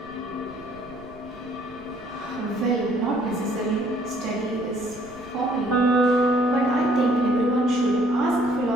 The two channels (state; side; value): noise; right; rumble, 23 dB below the sound